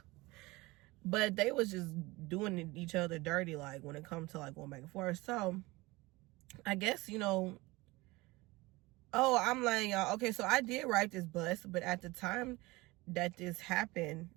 But they was just doing each other dirty, like, when it comes to, like, going back and forth. So, I guess, you know, oh, I'm like, y'all, okay, so I did ride this bus, but at the time that this happened,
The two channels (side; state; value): left; quieter; 21.8 dB